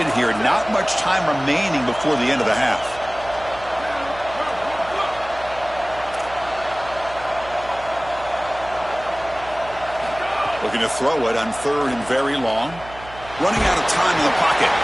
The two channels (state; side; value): noise; right; hum, 17 dB below the sound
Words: here. Not much time remaining before the end of the half. Looking to throw it on third and very long. Running out of time in the pocket.